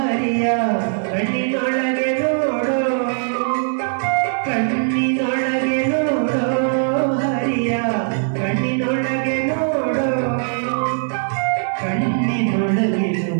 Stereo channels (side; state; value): left; silent; 66 dB below the other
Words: ಕಣ್ಣಿನೊಳಗೆ ನೋಡೋ, ಕಣ್ಣಿನೊಳಗೆ ನೋಡೋ ಹರಿಯ, ಕಣ್ಣಿನೊಳಗೆ ನೋಡೋ, ಕಣ್ಣಿನೊಳಗೆ